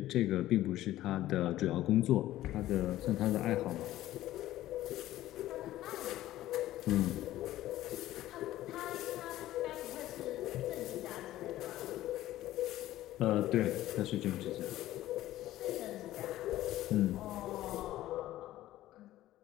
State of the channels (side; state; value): right; quieter; 14.7 dB